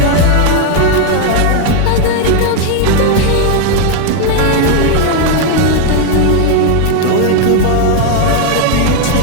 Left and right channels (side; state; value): both; different; correlation 0.01